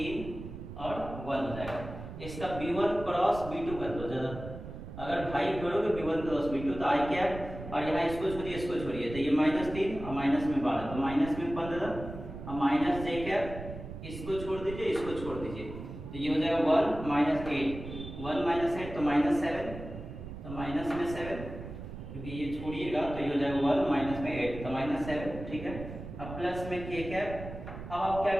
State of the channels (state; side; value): noise; right; rumble, 10 dB below the sound